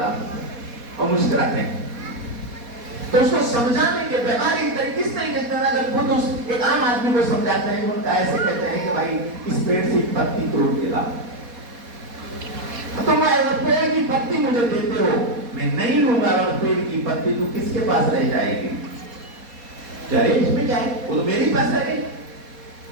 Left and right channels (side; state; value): left; late; 4.2 ms